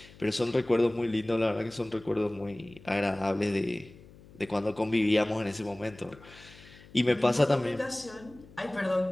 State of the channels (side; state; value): left; noise; hum, 22 dB below the sound